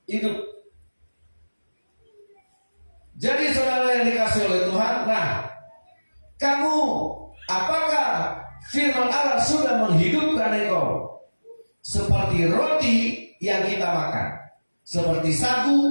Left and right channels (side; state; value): both; inverted; correlation -1.00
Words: Jadi saudara yang dikasih oleh Tuhan, nah, kamu, apakah firman Allah sudah menghidupkan engkau seperti roti yang kita makan? seperti